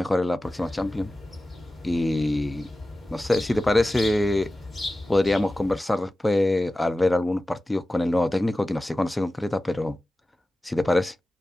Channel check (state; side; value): normal; both; correlation 0.95